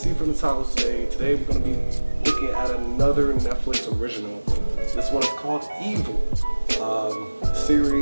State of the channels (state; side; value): inverted; both; correlation -1.00